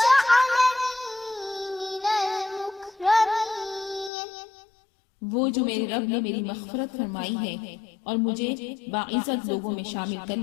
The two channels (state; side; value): drops out; right; at 4.1 s